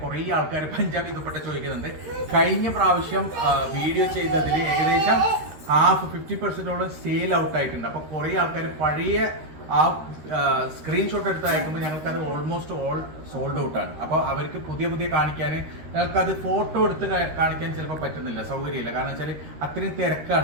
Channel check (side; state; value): left; late; 13 ms